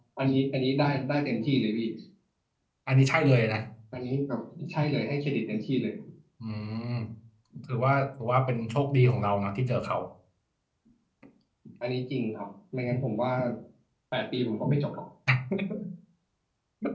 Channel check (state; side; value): identical; both; correlation 1.00